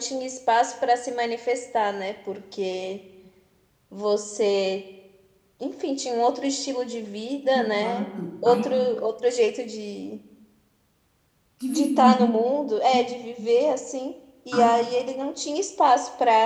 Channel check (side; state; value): both; identical; correlation 1.00